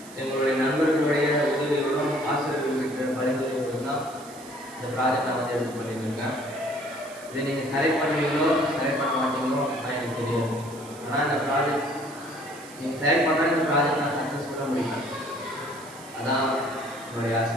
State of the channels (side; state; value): right; noise; hiss, 19 dB below the sound